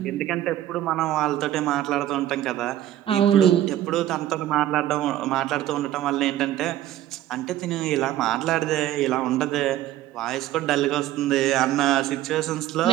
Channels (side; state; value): left; quieter; 13.2 dB